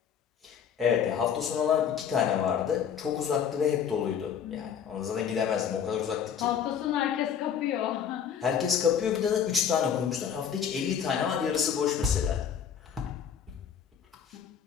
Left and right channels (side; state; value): right; quieter; 8.0 dB